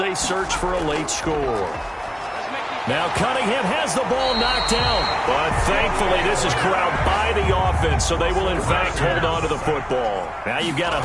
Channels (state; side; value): identical; both; correlation 1.00